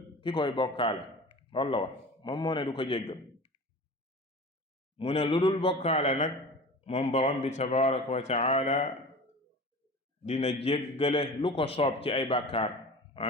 ki koy bokkaale loolu la wax moom moo ne du ko jéggal mu ne lu dul bokkaale nag moom borom bi tabaraka wa taala dina jéggale lu ko soob ci ay bàkkaar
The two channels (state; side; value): normal; both; correlation 0.36